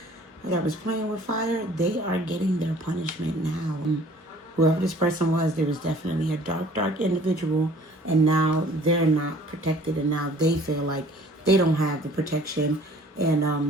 that was playing with fire, they are getting their punishment now. Whoever this person was, there was definitely a dark individual. And now they're not protected. And now they feel like they don't have the protection.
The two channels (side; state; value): both; normal; correlation 0.53